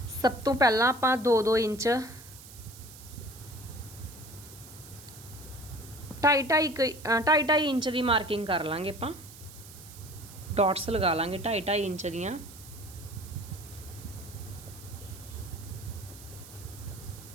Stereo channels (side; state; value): right; noise; hiss, 17 dB below the sound